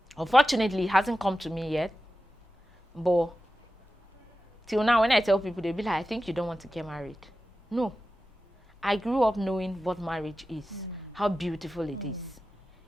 Unfortunately, it hasn't come to me yet. But till now, when I tell people, they'll be like, I think you don't want to get married. No. I grew up knowing what marriage is, how beautiful it is.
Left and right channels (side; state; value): both; normal; correlation 0.93